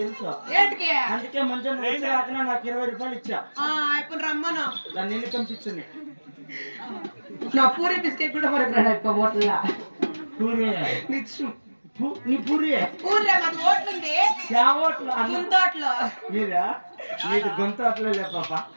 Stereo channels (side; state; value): both; inverted; correlation -1.00